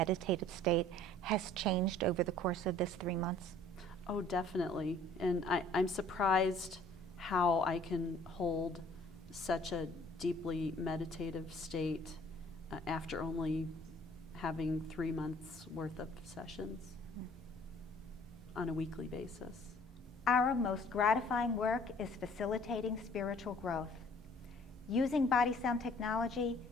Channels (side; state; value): both; normal; correlation 0.55